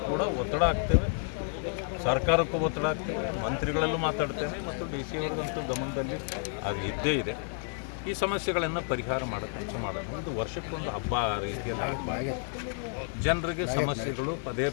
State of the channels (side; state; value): right; silent; 56 dB below the other